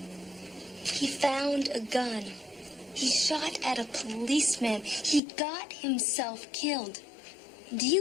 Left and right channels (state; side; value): drops out; right; at 5.2 s